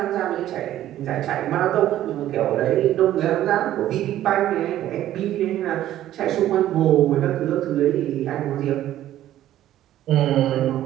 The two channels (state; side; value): quieter; left; 12.9 dB